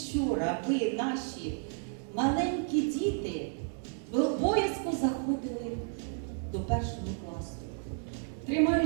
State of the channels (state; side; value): silent; left; 56 dB below the other